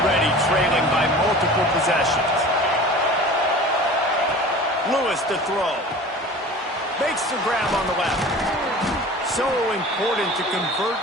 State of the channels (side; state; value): both; normal; correlation 0.40